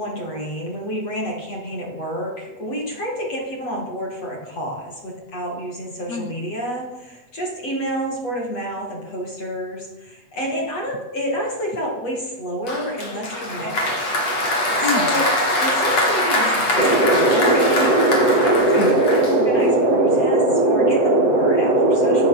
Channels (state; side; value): late; right; 8.2 ms